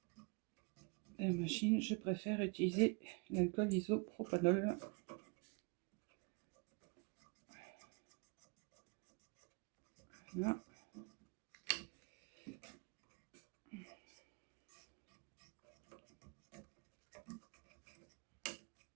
la machine, je préfère utiliser l'alcool isopropanol. Voilà.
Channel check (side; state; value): left; quieter; 31.9 dB